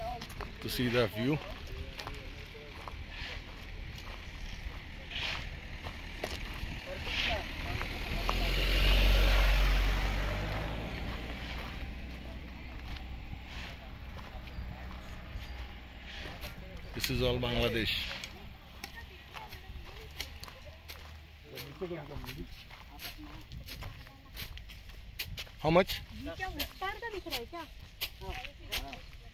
to see the view. This is all Bangladesh. How much?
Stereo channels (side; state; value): both; identical; correlation 1.00